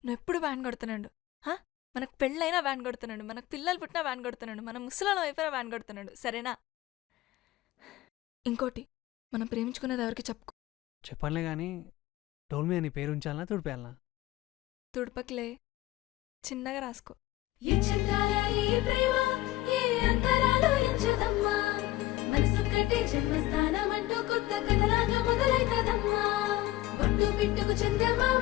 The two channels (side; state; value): right; quieter; 16.8 dB